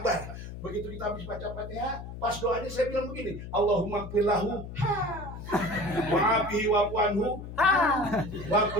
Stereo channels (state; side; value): noise; left; hum, 10 dB below the sound